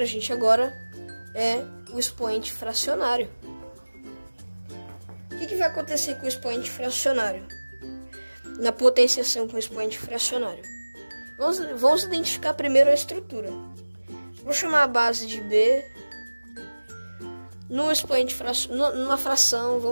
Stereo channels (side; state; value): both; inverted; correlation -1.00